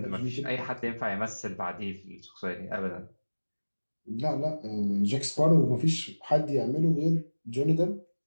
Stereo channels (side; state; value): both; inverted; correlation -1.00